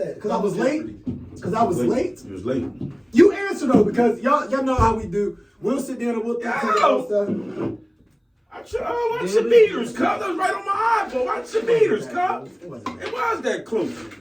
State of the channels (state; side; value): identical; both; correlation 1.00